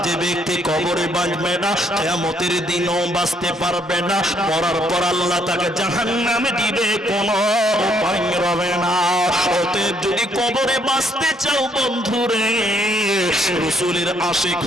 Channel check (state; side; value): normal; both; correlation 0.69